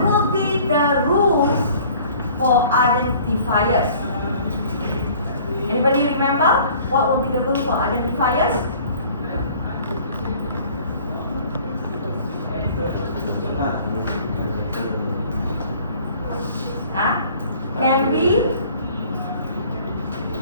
will be the rules for identifiers? Anybody remember what will be the rule for identifiers? Can be,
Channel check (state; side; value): inverted; both; correlation -0.52